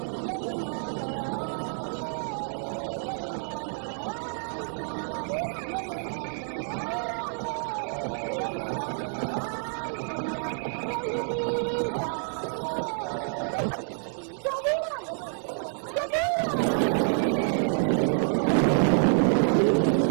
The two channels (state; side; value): silent; left; 59 dB below the other